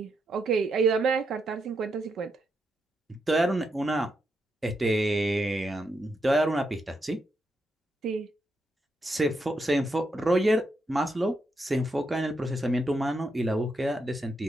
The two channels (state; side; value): normal; both; correlation 0.82